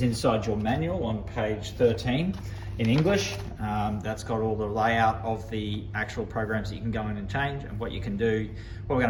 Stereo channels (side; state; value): both; identical; correlation 1.00